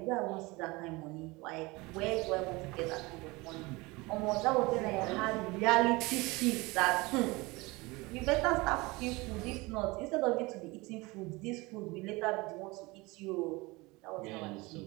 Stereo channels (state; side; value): quieter; left; 23.5 dB